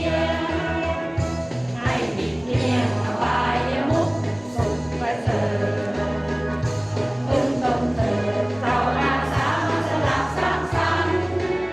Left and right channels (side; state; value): right; noise; hum, 27 dB below the sound